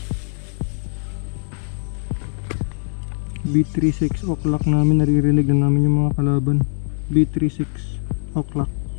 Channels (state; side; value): silent; right; digital silence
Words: B3, 6 o'clock namin, naririnig na namin yung mga kalaban. B3, 6 o'clock.